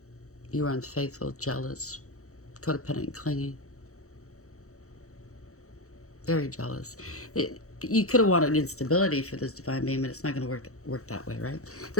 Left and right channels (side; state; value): right; late; 0.64 ms